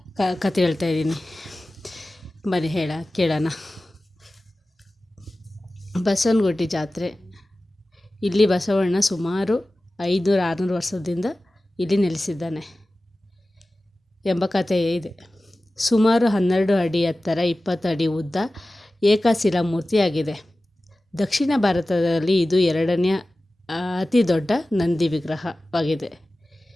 ಬನ್ನಿ ಕೇಳೋಣ. ಬಸವನಗುಡಿ ಜಾತ್ರೆ. ಇಲ್ಲಿ ಬಸವಣ್ಣ ಸುಮಾರು 500-600 ವರ್ಷದಿಂದ ಇಲ್ಲಿ ನೆಲೆಸಿದ್ದಾನೆ ಎಂಬ ಕಥೆ ಇದೆ. ಸುಮಾರು 12 ಅಡಿ ಎತ್ತರ, 20 ಅಡಿ ಉದ್ದ, ಏಕಶಿಲಾ ಮೂರ್ತಿಯಾಗಿದೆ. ದಕ್ಷಿಣ ಭಾರತದಲ್ಲಿ ಇದು 2ನೇ ಅತಿ ದೊಡ್ಡ ನಂದಿ ವಿಗ್ರಹವಾಗಿದೆ.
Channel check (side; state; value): both; normal; correlation 0.96